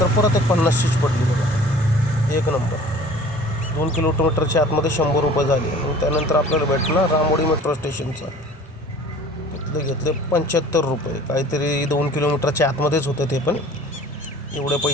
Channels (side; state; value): both; normal; correlation 0.47